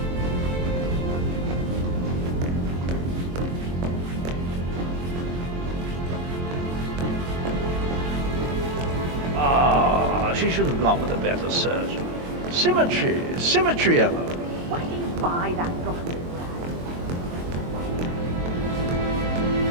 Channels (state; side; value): late; left; 23 ms